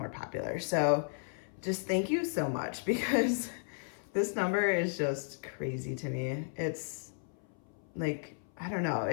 popular. So just thank you so much, because this number is just crazy to me. It's like, I don't know.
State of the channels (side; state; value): right; silent; 55 dB below the other